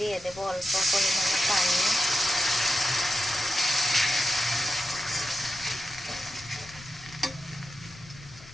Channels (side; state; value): left; noise; rumble, 20 dB below the sound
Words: দেবো অল্প পরিমাণে পানি।